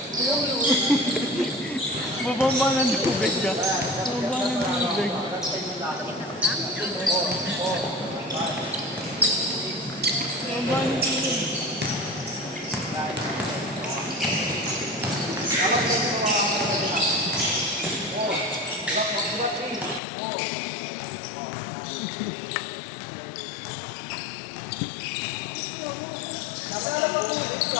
Bubomba ng tubig ka. Bubomba ng tubig. Bubomba ng tubig.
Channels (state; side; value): drops out; right; at 20.0 s